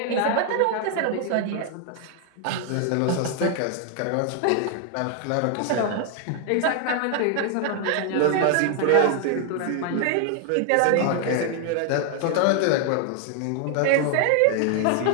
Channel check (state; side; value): different; both; correlation 0.00